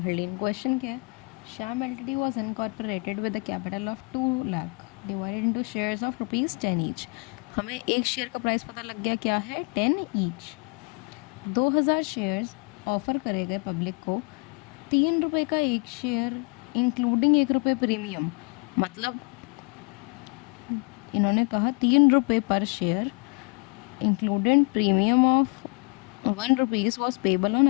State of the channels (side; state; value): right; quieter; 33.3 dB